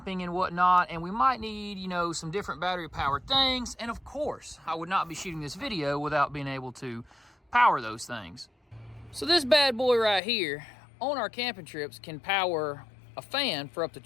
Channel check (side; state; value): right; drops out; at 10.2 s